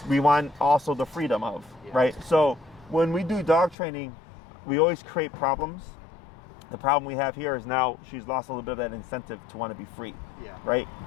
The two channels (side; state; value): right; drops out; at 3.8 s